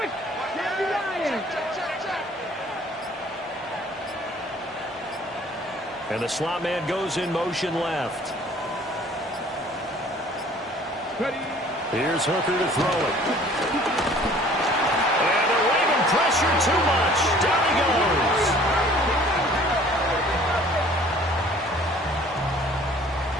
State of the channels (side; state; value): both; normal; correlation 0.53